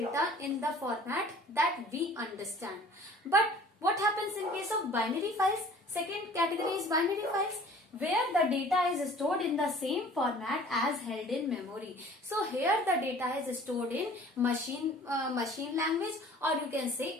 in the format that we understand. But what happens in case of binary files? Second category is binary files, where the data is stored in the same format as held in memory. So here the data is stored in machine language, or you can say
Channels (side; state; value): both; normal; correlation 0.49